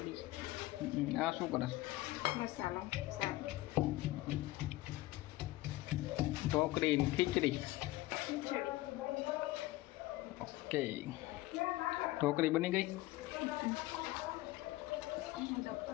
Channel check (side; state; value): right; quieter; 18.0 dB